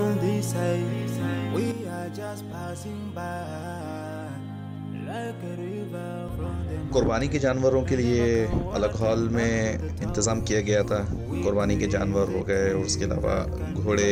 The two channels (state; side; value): identical; both; correlation 1.00